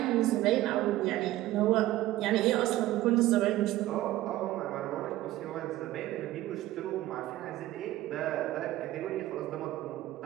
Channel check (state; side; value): quieter; left; 15.7 dB